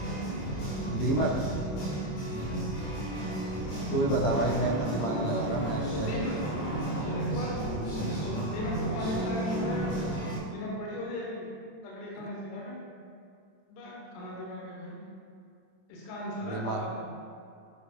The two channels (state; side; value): late; right; 26 ms